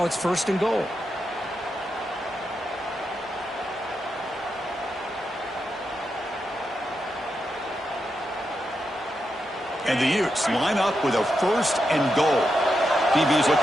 it's 1st and goal. And the Utes line up with a 1st and goal. DB's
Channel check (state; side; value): normal; both; correlation 0.85